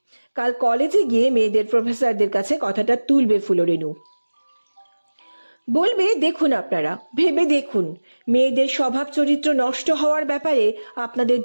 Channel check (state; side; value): inverted; both; correlation -1.00